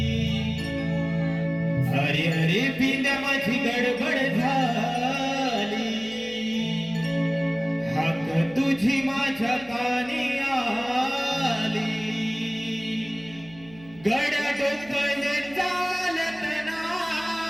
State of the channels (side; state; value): right; noise; hum, 21 dB below the sound